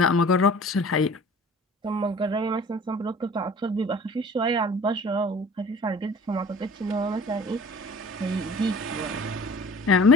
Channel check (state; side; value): normal; both; correlation 0.45